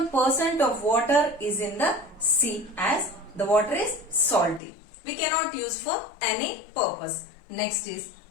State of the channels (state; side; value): drops out; right; at 4.6 s